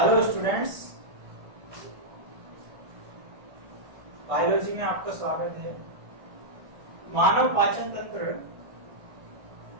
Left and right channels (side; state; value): left; late; 1.6 ms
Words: स्टूडेंट्स, बायोलॉजी में आपका स्वागत है। मानव पाचन तंत्र